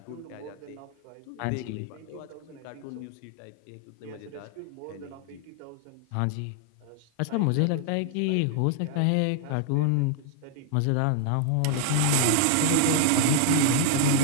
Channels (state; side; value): different; both; correlation -0.01